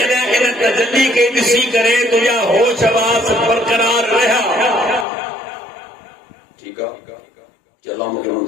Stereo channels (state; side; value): drops out; right; at 5.1 s